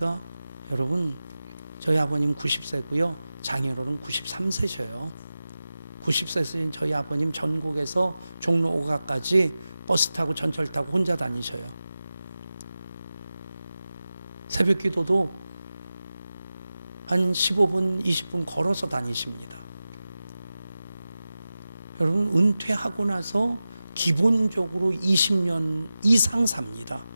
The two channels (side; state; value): both; inverted; correlation -0.95